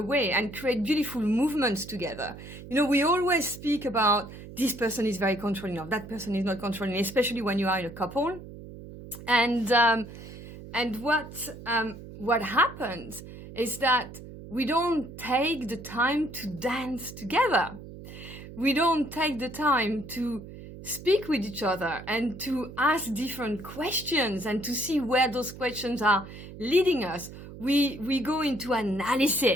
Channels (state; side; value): noise; right; hum, 14 dB below the sound